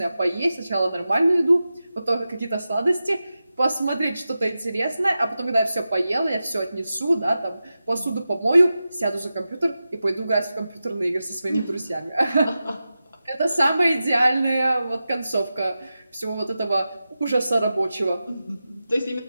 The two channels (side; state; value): both; inverted; correlation -0.93